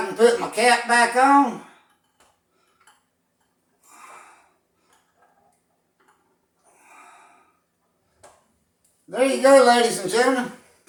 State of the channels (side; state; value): both; identical; correlation 1.00